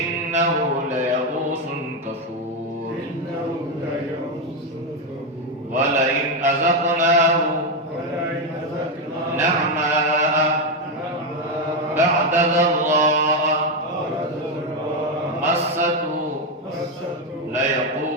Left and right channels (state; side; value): normal; both; correlation 0.07